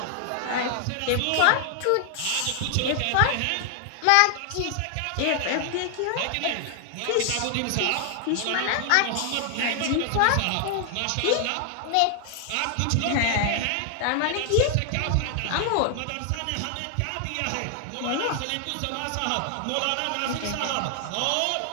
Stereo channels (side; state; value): both; different; correlation 0.00